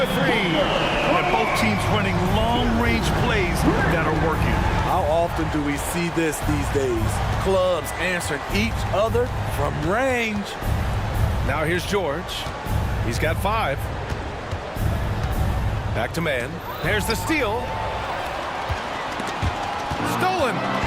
3. And both teams running long-range plays that are working. How often do we see this these days? Clubs answering each other from range. Now here's George. He's got 5. Back to man. There's the steal. Stolen.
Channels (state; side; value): identical; both; correlation 1.00